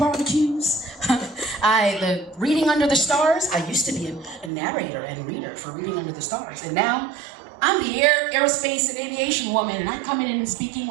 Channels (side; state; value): left; drops out; at 4.5 s